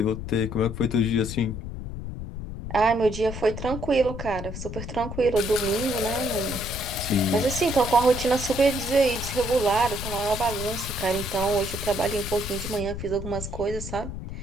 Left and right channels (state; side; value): noise; left; rumble, 8 dB below the sound